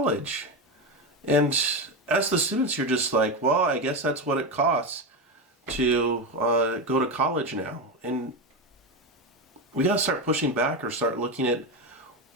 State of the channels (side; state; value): both; normal; correlation 0.15